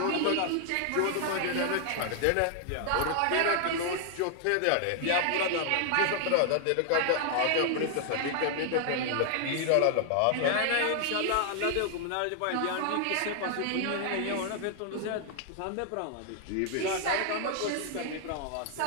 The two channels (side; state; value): both; different; correlation 0.00